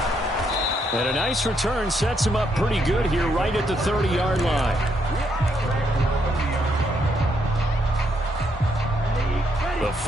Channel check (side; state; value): both; normal; correlation 0.75